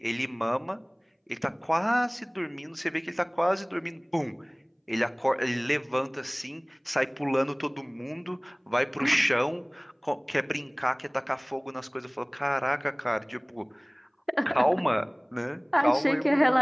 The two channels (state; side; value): identical; both; correlation 1.00